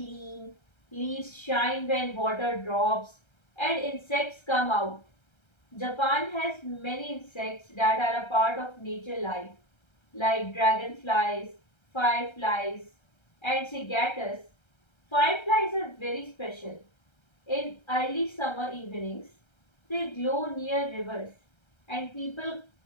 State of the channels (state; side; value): late; right; 1.3 ms